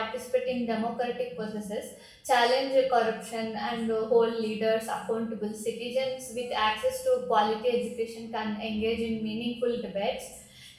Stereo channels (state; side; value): identical; both; correlation 1.00